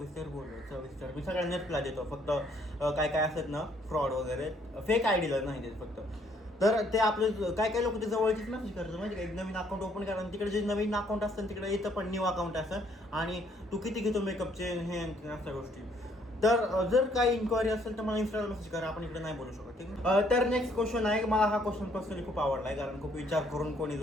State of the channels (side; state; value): both; normal; correlation 0.66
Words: बोलूया सविस्तर. मी सगळ्यांना रिप्लाय देतो फक्त काय काय असतात ना फ्रॉड वगैरे फेक आयडीला नाही देत फक्त. तर ते आपले काय काय लोक ते जवळचीच मेसेज करतात माहिती का एक नवीन अकाउंट ओपन करा आणि तिकडे जे नवीन अकाउंट असतं तिकडे येतं पण न्यू अकाउंट असतं आणि तू किती घेतो मेकअपचे हे अशा गोष्टी. तर जर काही इन्क्वायरी असेल तर मला इन्स्टाला मेसेज करा आपण इकडे नाही बोलू शकत ठीक आहे. तर नेक्स्ट क्वेश्चन आहे मला हा क्वेश्चन पर्सनली खूप आवडला आहे कारण खूप विचार करून कोणी